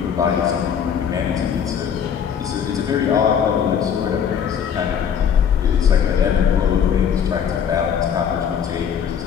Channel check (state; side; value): quieter; right; 7.9 dB